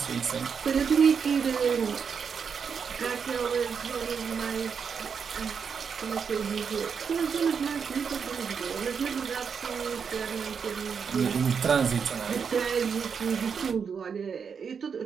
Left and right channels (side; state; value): left; quieter; 6.4 dB